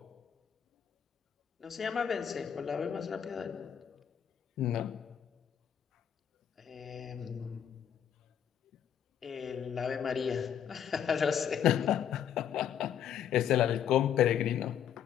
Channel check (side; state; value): right; quieter; 9.0 dB